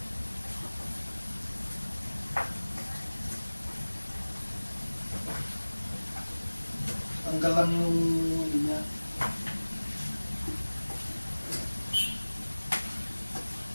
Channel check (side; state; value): both; inverted; correlation -1.00